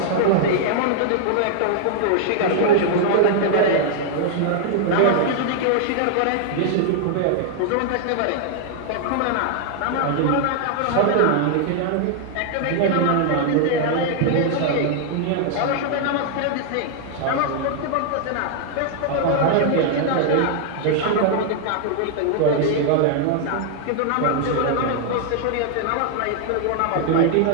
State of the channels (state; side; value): different; both; correlation -0.01